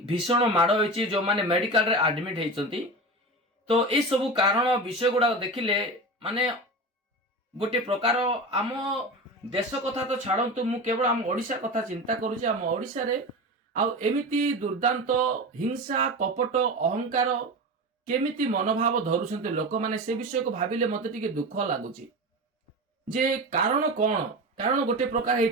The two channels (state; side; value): normal; both; correlation 0.27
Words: भीषण माड़ होइछि जो माने मेडिकल रे एडमिट हेइछन्ती। तो ए सब कारण विषय गुड़ा देखिले माने गोटे प्रकार आम देश कथा तो छाड़न्तु मु केवल आम ओडिशा कथा चिंता करूछि। आम ओडिशा रे आउ एमिति दुर्दांत हिंसा कपट अहंकार केमिति मनोभाव धरुछन्ते लोक माने से विषय को भाबिले मते टिके दुख लागुची जे कारण कोन। कारण गोटे प्रकार